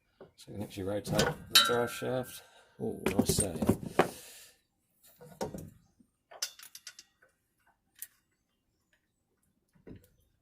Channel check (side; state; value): both; identical; correlation 1.00